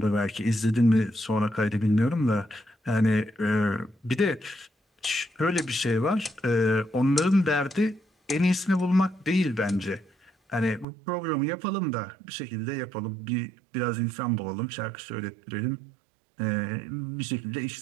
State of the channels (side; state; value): left; drops out; at 10.9 s